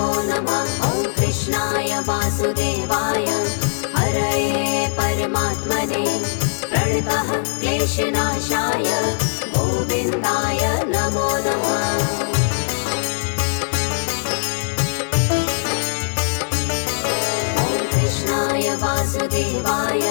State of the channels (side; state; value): right; silent; digital silence